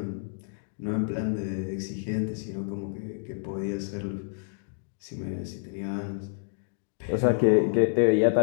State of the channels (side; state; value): right; silent; digital silence